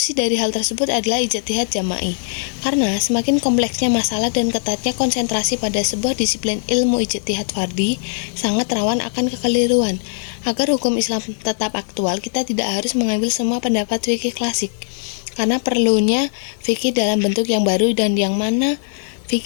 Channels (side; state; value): right; silent; digital silence